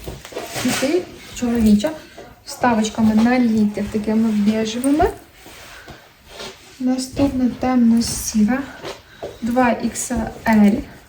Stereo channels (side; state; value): both; identical; correlation 1.00